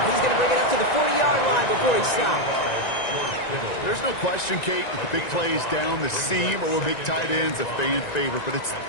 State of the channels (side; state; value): right; late; 1.9 ms